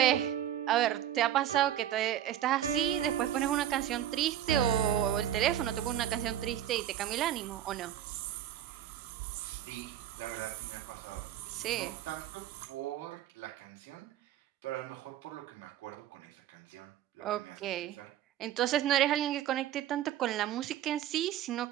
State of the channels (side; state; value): left; quieter; 11.5 dB